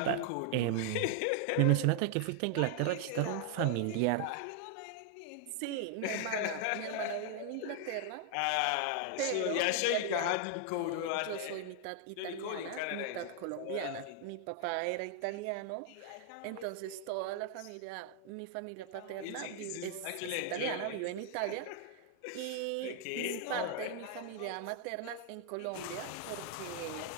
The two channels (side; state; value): both; different; correlation 0.00